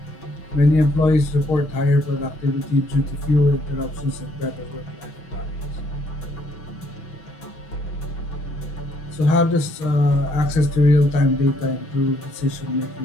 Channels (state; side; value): late; right; 6.4 ms